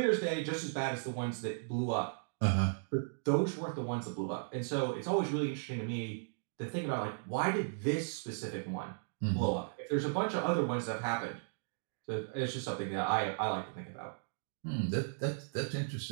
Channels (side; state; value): left; silent; digital silence